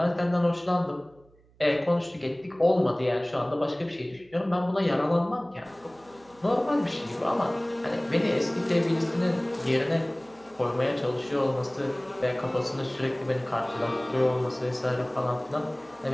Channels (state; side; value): noise; right; hum, 30 dB below the sound